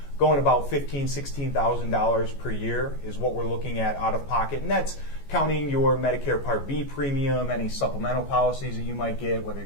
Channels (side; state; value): right; late; 14 ms